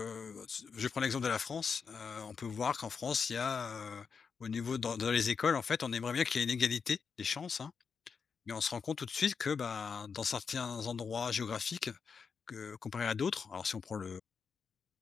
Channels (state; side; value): quieter; right; 5.8 dB